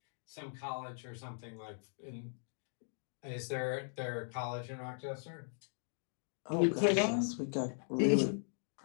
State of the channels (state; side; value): silent; right; digital silence